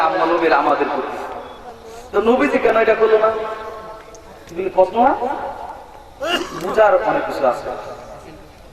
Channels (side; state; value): both; identical; correlation 1.00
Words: আমার নবীর আমাদের প্রতি, তো নবীজি কেন এটা করলো না? প্রশ্ন না? বুঝার অনেক কিছু আছে,